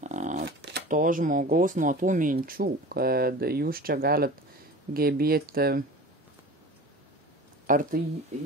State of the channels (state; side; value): normal; both; correlation 0.37